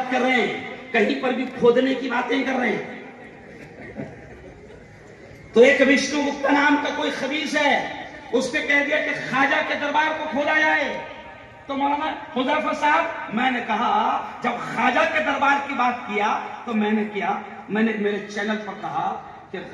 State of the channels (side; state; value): both; identical; correlation 1.00